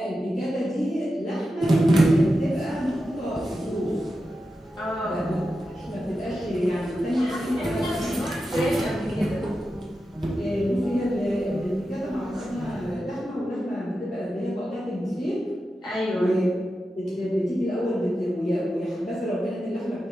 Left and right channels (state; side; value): normal; both; correlation 0.90